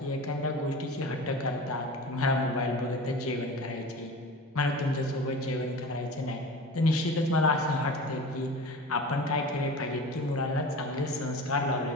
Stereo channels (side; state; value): both; normal; correlation 0.35